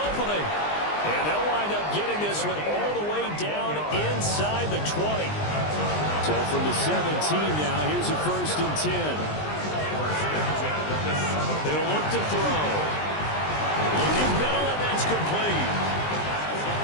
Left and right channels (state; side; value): late; right; 20 ms